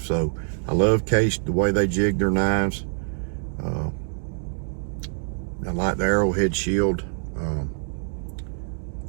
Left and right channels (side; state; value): left; silent; 62 dB below the other